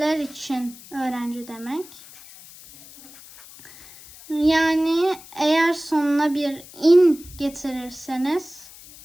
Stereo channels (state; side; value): noise; left; hiss, 19 dB below the sound